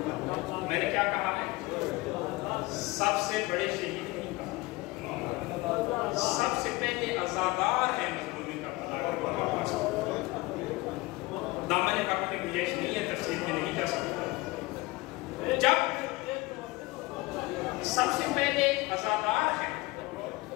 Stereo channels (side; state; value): right; quieter; 21.8 dB